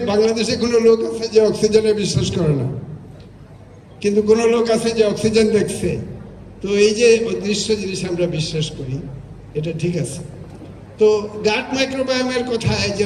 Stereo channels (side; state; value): both; identical; correlation 1.00